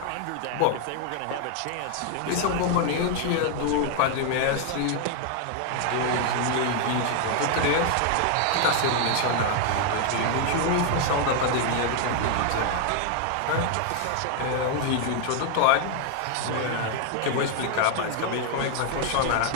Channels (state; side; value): different; both; correlation 0.00